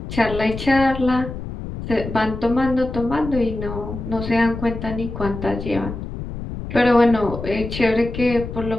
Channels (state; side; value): noise; left; rumble, 8 dB below the sound